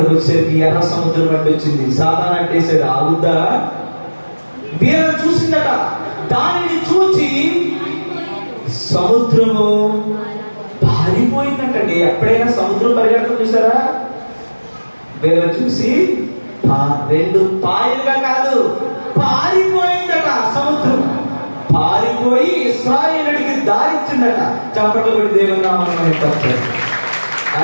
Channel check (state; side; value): inverted; both; correlation -1.00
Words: వచ్చేసరికి ఎర్ర సముద్రం అడ్డు వచ్చింది. సాతాను అంటేసాడు, ఆగుద్దా? వీళ్ళని చూసిందట. దానిని చూచి సముద్రము పారిపోయిందంటండి. ఎప్పుడైనా సముద్రం పరిగెడతాం చూసారా? వీళ్ళని చూసి 2 పాయలుగా కాదు, పారిపోయిందట సముద్రం. పారిపోయి ఇశ్రాయేలుడికి దారిచ్చిందట. చప్పట్లు కొట్టి దేవుని నామమున పలికారు.